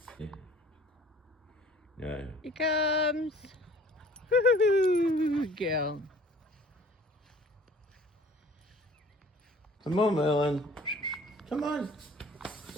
Yeah. No. Here comes. Woo-hoo, girl. Come on, Merlin. Come on.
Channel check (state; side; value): normal; both; correlation 0.52